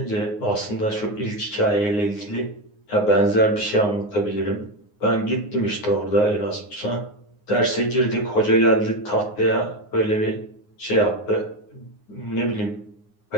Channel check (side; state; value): right; late; 9.6 ms